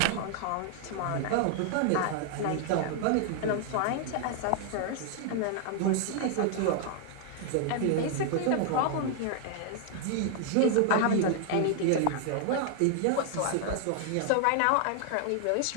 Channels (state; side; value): different; both; correlation 0.00